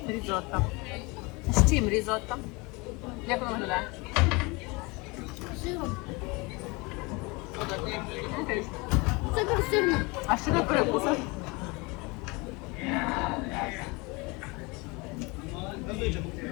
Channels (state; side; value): quieter; right; 26.5 dB